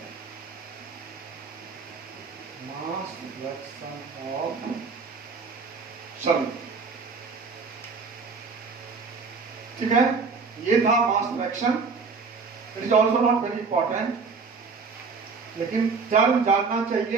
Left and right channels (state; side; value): quieter; left; 4.8 dB